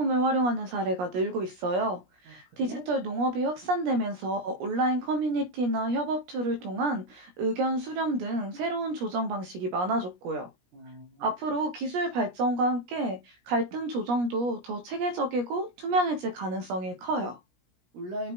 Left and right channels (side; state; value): left; late; 17 ms